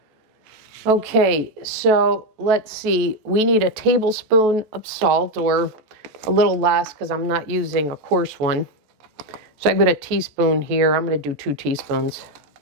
Okay, so let's see. We need a tablespoon of salt, or a little less because I'm not using a coarse one. So I've got a teaspoon here. I'm going to do 2 teaspoons,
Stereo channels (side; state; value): left; late; 14 ms